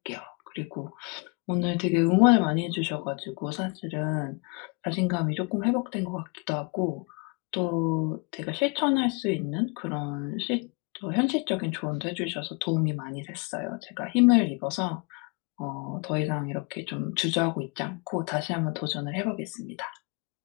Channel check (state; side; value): quieter; right; 32.2 dB